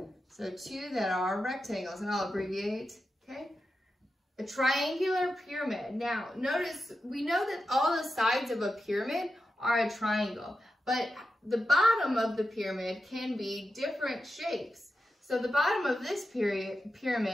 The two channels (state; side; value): normal; both; correlation 0.90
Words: So two that are rectangles, and I'll abbreviate, okay? A triangular pyramid. Now, notice, we know that all the sides of a pyramid are a triangle, but the bottom of the pyramid can be different shapes. So the bottom of this